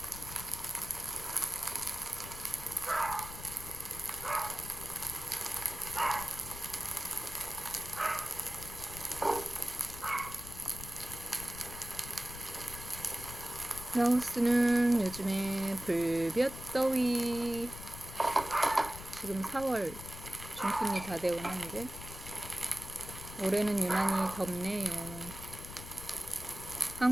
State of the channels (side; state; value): left; noise; rumble, 12 dB below the sound